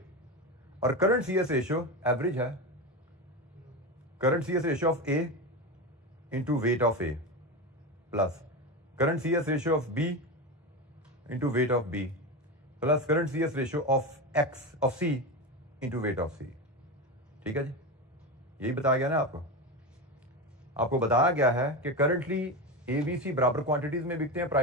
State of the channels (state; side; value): normal; both; correlation 0.19